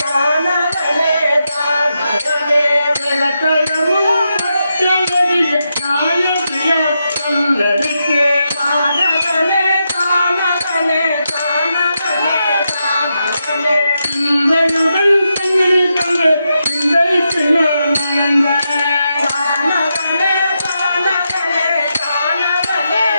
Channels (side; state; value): both; inverted; correlation -0.85